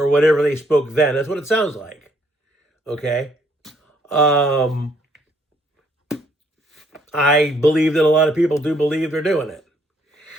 whatever they spoke then. That's what it sounds like. Okay? I believe that a lot of people do believe they're doing it.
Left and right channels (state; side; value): normal; both; correlation 0.68